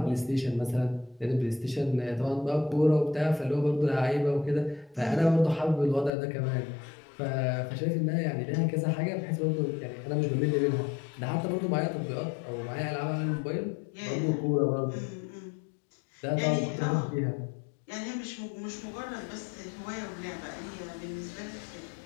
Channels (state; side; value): drops out; right; at 6.1 s